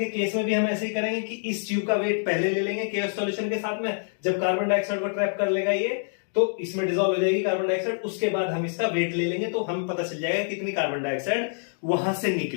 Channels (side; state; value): right; silent; digital silence